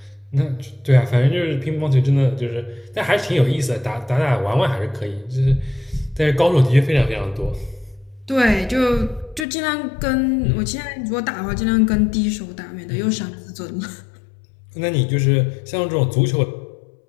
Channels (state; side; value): drops out; right; at 9.5 s